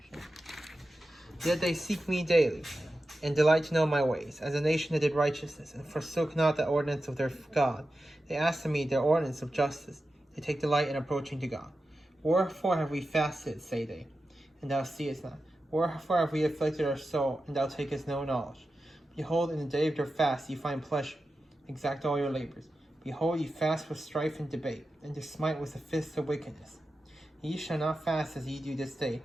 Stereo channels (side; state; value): both; normal; correlation 0.92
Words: Yet they seek me daily, and delight to know my ways, as a nation that did righteousness, and forsook not the ordinance of their God. They ask of me their ordinance of justice. They take delight in approaching to God. Wherefore have we fasted, say they, and thou seest not? Wherefore have we afflicted our soul, and thou takest no knowledge? Behold, in the day of your fast ye find pleasure, exact all your labors. Behold, ye fast for strife and debate, and to smite with the fists of wickedness. Ye shall not fast as ye do this day,